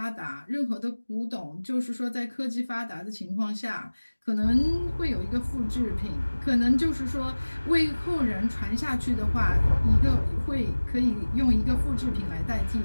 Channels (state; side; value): inverted; both; correlation -1.00